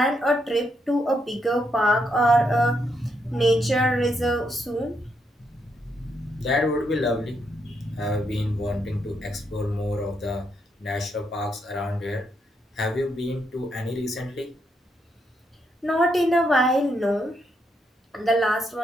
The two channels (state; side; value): normal; both; correlation 0.78